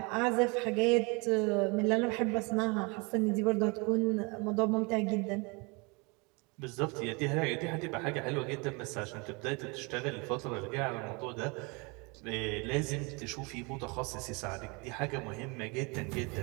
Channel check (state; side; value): quieter; left; 29.4 dB